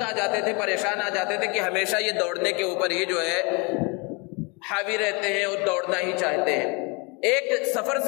آ جاتے تھے، پریشان آ جاتے تھے کہ ہمیشہ یہ دوڑنے کے اوپر ہی جو ہے حاوی رہتے ہیں اور دوڑنا ہی چاہتے ہیں. ایک سفر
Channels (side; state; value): right; quieter; 30.3 dB